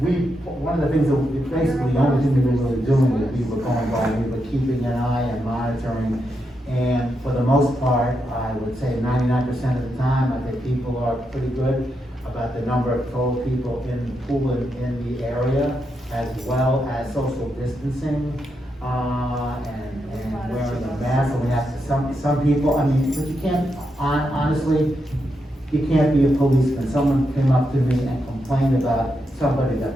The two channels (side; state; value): both; normal; correlation 0.83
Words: one of the things that basically the only thing we were really doing is we were going by, we were keeping an eye and monitoring, and for the most part, I would say 99% of the time, I think people are pretty good about the number of total people in the pool in the area, as well as social distancing, and wearing a mask, and we have to, some people, I mean, but you can't, honestly, you can't be a policeman. Someone came up to me and complained about somebody